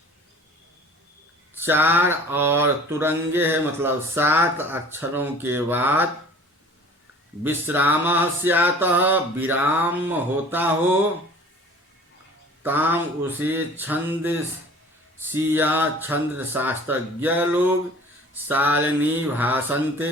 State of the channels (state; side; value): normal; both; correlation 0.46